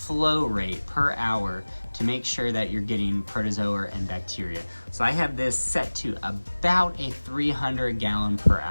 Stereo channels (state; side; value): inverted; both; correlation -1.00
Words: rate per hour to make sure that you're getting protozoa and bacteria. So I have this set to about a 300 gallon per